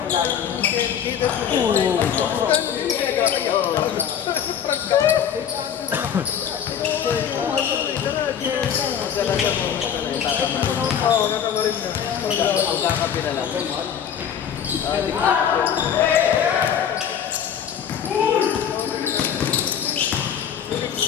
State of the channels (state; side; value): quieter; right; 8.5 dB